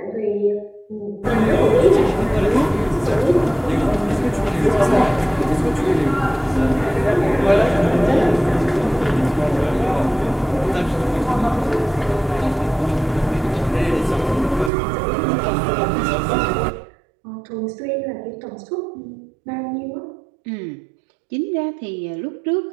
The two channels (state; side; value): drops out; left; at 14.7 s